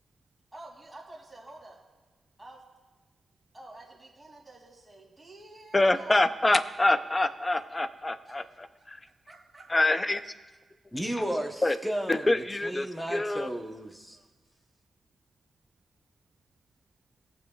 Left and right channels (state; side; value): normal; both; correlation 0.97